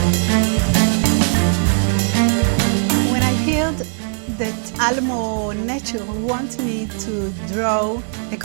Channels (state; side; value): silent; left; 57 dB below the other